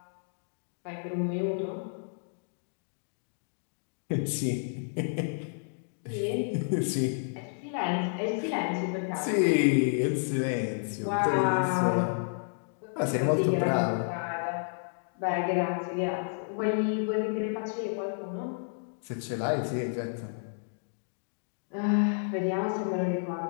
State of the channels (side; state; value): right; silent; digital silence